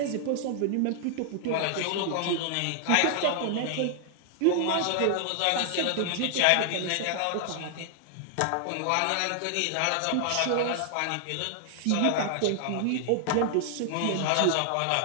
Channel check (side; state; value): both; different; correlation 0.00